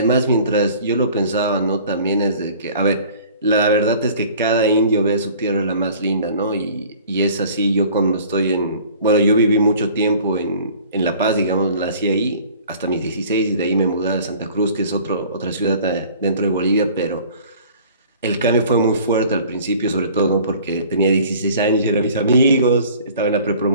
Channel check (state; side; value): inverted; both; correlation -0.49